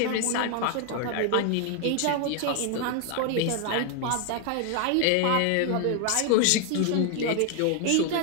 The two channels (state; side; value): different; both; correlation 0.01